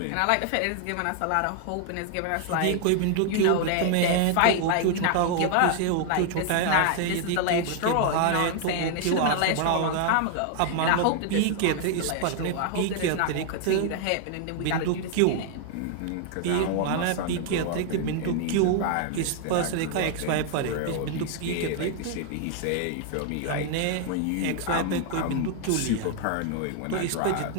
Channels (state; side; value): different; both; correlation 0.00